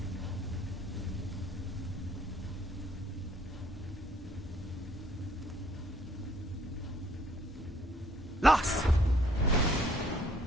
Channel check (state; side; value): normal; both; correlation 0.62